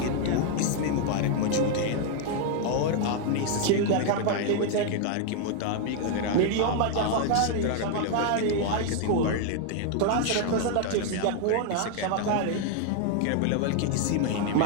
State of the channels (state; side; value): different; both; correlation 0.00